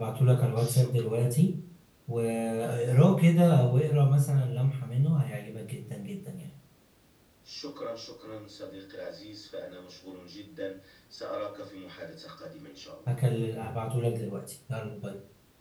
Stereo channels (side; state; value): both; identical; correlation 1.00